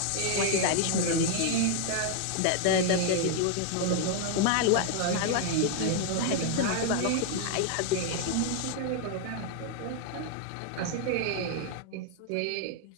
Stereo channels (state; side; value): different; both; correlation 0.00